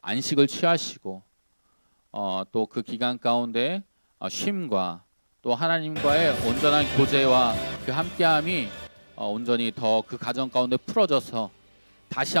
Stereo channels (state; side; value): inverted; both; correlation -1.00